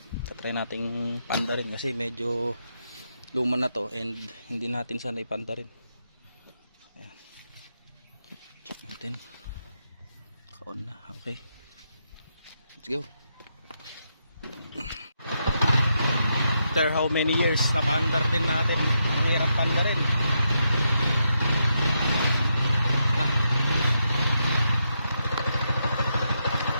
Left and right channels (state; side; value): inverted; both; correlation -0.82